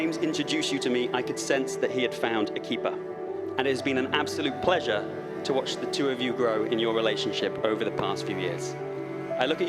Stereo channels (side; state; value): both; identical; correlation 1.00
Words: introduced you to me, I could sense that he had found a keeper. And it has been an absolute pleasure to watch the two of you grow in your relationship over the past few years. I look at